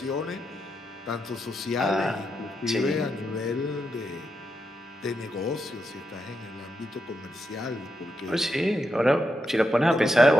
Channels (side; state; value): both; normal; correlation 0.84